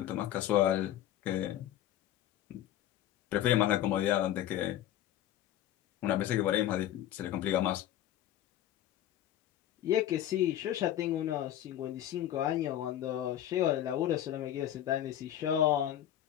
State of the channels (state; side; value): quieter; right; 12.2 dB